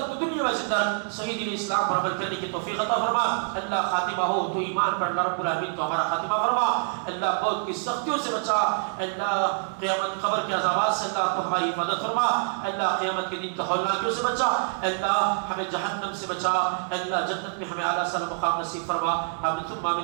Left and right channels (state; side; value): silent; left; digital silence